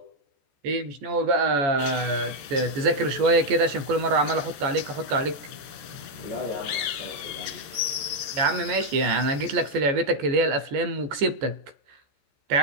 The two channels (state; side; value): late; left; 14 ms